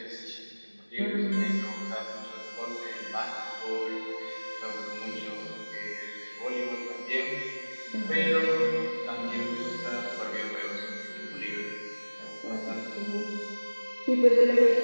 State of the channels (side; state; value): both; inverted; correlation -1.00